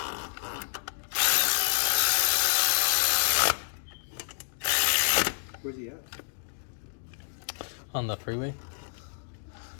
Where's he at? On the freeway.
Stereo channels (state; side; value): silent; right; digital silence